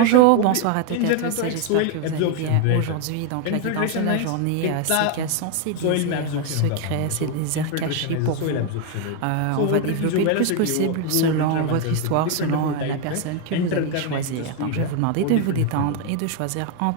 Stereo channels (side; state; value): both; different; correlation 0.01